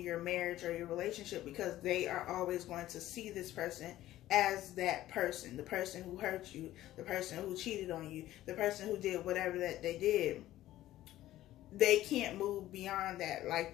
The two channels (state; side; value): quieter; right; 14.5 dB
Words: your marriage or your relationship, because they are always going to see this person as that person, the person who hurt you, the person who cheated on you, the person who did whatever that they did. They can't move beyond that. Like,